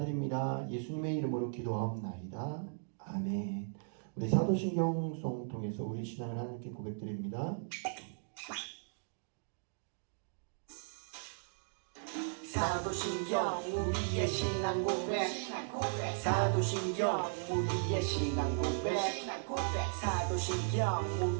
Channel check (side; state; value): left; silent; digital silence